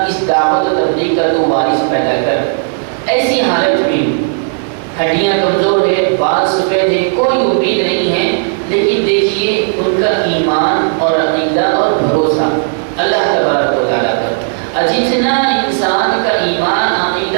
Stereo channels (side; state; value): left; silent; digital silence